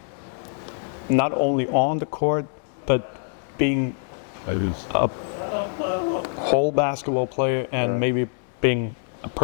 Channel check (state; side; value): silent; right; 62 dB below the other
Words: Not only on the court, but being a whole basketball player and maybe being a